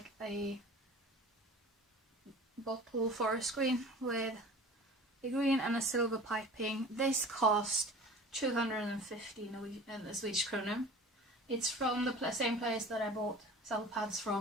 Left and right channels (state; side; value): normal; both; correlation 0.41